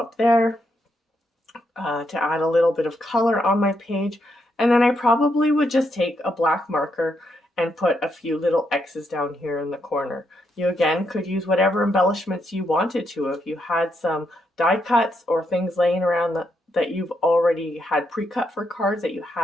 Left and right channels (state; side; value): normal; both; correlation 0.79